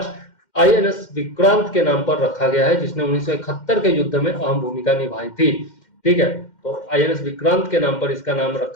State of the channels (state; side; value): late; right; 2.1 ms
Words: INS विक्रांत के नाम पर रखा गया है, जिसने 1971 के युद्ध में अहम भूमिका निभाई थी। ठीक है, तो INS विक्रांत के नाम पर इसका नाम